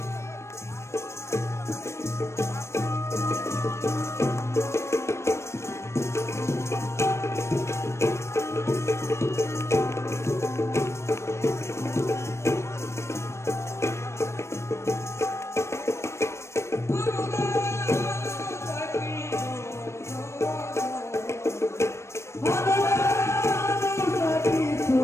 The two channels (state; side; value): late; right; 0.13 ms